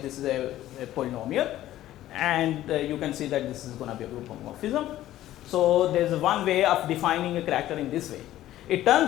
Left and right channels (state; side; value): quieter; right; 13.9 dB